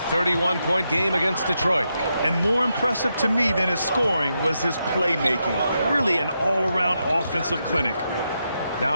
game against Detroit. And more impressive to me than his scoring was his playmaking. Really an all-around offensive clinic.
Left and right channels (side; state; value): both; inverted; correlation -0.84